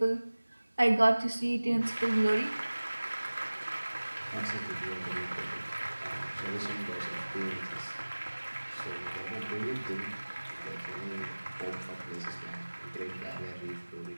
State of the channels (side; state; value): both; inverted; correlation -1.00